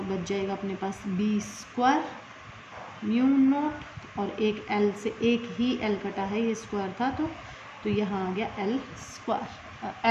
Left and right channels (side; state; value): both; identical; correlation 1.00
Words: बच जाएगा अपने पास B² μ0, और एक L से एक ही L कटा है, ये स्क्वायर था, तो यहाँ आ गया L²